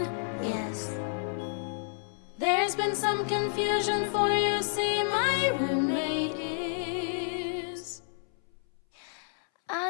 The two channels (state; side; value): silent; right; 58 dB below the other